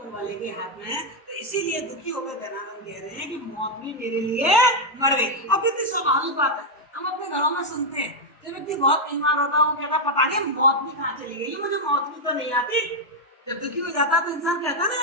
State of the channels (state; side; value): normal; both; correlation 0.01